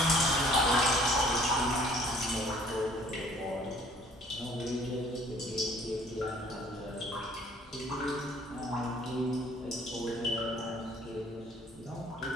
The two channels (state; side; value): normal; both; correlation 0.56